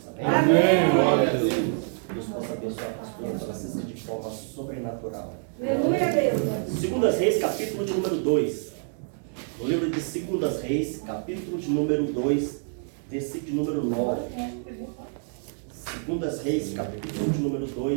Amém? Amém. Glória a Deus. Deus possa abençoar a pastora Francisca de forma sobrenatural. Aleluia, Deus. Segundas Reis, capítulo de número 2. No livro de Segundas Reis, capítulo de número 2, versículo de número 9. Segundas Reis, capítulo de número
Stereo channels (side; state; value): left; silent; 60 dB below the other